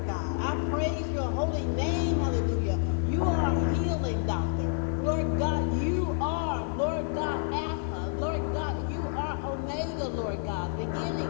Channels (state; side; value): silent; right; digital silence